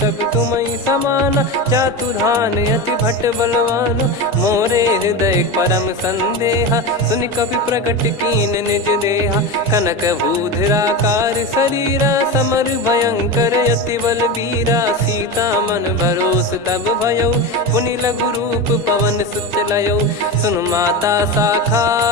तुम समाना चातुधान अति भट्ट बलवान। मोरे हृदय परम संदेहा सुनि कपि प्रकट कीन निज देहा। कनक भूधराकार शरीरा समर भयंकर अति बलबीरा। सीता मन भरोस तब भयऊ पुनि लघु रूप पवन सुत लयऊ। सुन माता शाखा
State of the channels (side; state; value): both; normal; correlation 0.21